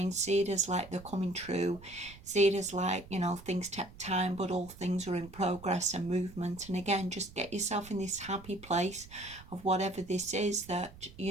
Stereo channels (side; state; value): right; noise; rumble, 19 dB below the sound